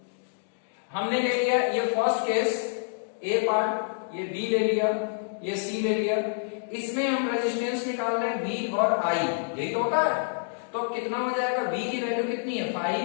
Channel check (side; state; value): right; silent; digital silence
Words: हमने ले लिया ये फर्स्ट केस ए पार्ट, ये बी ले लिया, ये सी ले लिया। इसमें हम रेजिस्टेंस निकाल रहे हैं V और I, यही तो होता है। तो कितना हो जाएगा, V की वैल्यू कितनी है